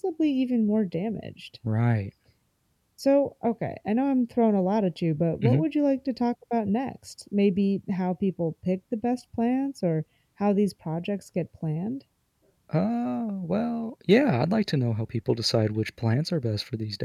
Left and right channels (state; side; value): identical; both; correlation 1.00